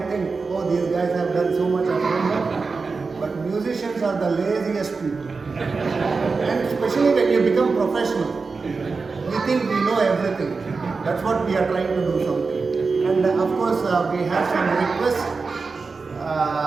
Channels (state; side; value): quieter; left; 4.4 dB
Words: think, oh, these guys have done so much homework, but musicians are the laziest people. And especially when you become professional, we think we know everything. That's what we are trying to do something. And of course, we have some request